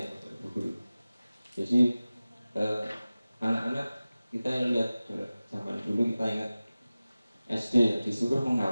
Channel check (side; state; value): both; inverted; correlation -0.97